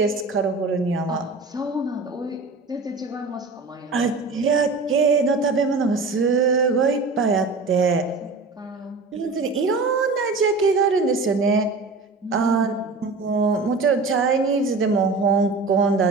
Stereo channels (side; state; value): left; quieter; 3.8 dB